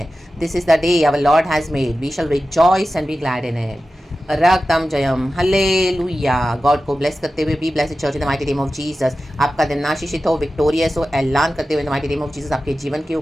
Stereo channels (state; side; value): normal; both; correlation 0.94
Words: This is the day our lord has made, we shall rejoice and be glad in it. रक्तम जयम, हालेलुया। गॉड को ब्लेस करते हुए, be blessed church in the mighty name of Jesus. आपका दिन आशीषित हो, विक्टोरियस हो, ऐलान करते हुए in the mighty name of Jesus आपके जीवन के